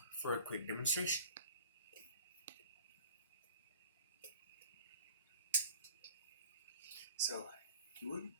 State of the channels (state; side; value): inverted; both; correlation -0.44